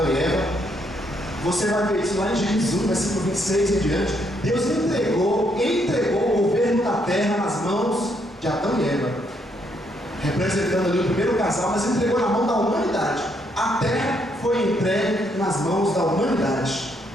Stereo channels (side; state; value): both; normal; correlation 0.73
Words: e Eva. Você vai ver isso lá em Gênesis 1, versículo 26 e em diante. Deus entregou o governo da terra nas mãos de Adão e Eva, representando ali o primeiro casal, mas entregou na mão da humanidade. A terra foi entregue nas mãos da humanidade.